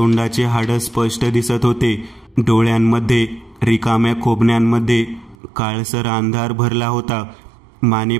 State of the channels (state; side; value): drops out; left; at 5.4 s